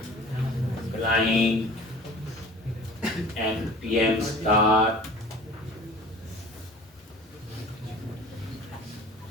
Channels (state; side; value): normal; both; correlation 0.44